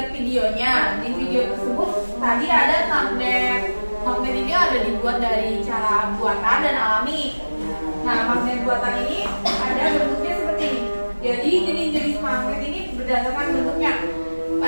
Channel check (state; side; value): inverted; both; correlation -1.00